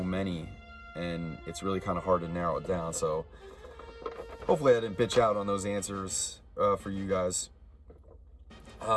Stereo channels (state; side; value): identical; both; correlation 1.00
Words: many and it's really kind of hard to narrow it down. So hopefully I didn't bitch out on those answers for you guys.